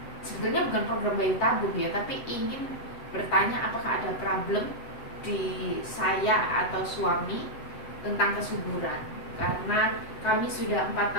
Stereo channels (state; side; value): late; right; 7.9 ms